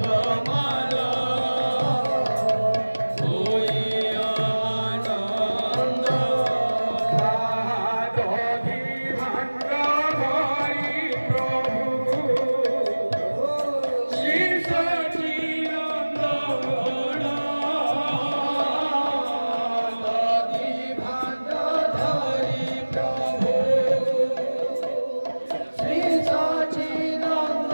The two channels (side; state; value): both; inverted; correlation -1.00